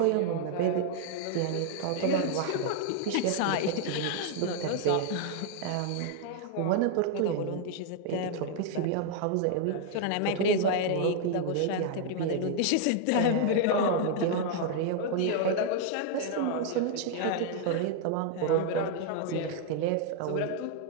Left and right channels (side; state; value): both; different; correlation 0.00